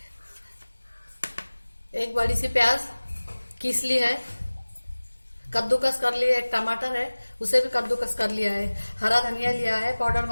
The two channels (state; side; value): inverted; both; correlation -1.00